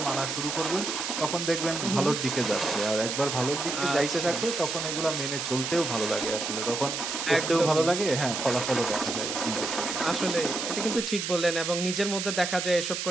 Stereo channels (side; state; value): right; noise; hiss, 3 dB below the sound